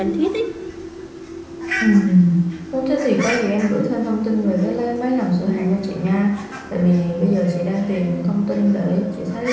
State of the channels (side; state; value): both; identical; correlation 1.00